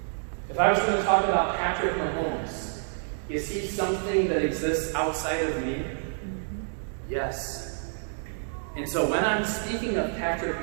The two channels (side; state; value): left; silent; digital silence